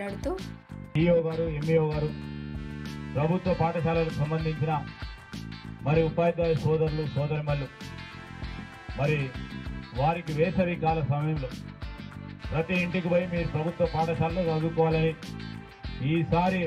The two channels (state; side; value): identical; both; correlation 1.00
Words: ఎంఈఓ గారు, ప్రభుత్వ పాఠశాలకు సంబంధించిన మరి ఉపాధ్యాయ సోదరులు సోదరిమల్లు మరి వారికి వేసవి కాల సమయంలో ప్రతి ఇంటికి పోయి మీరు ప్రభుత్వ పాఠశాలలో చదువుకోవాలని ఈసారి